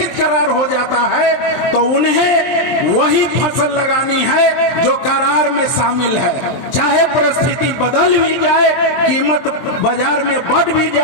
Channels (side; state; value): right; late; 23 ms